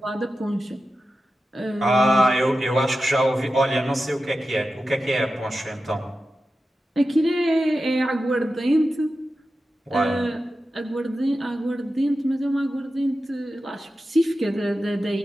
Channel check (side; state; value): both; normal; correlation 0.92